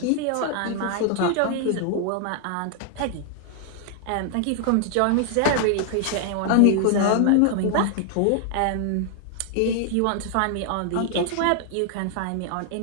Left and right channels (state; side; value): different; both; correlation 0.00